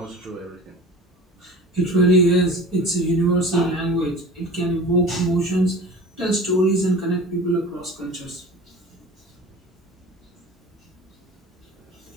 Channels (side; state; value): both; normal; correlation 0.38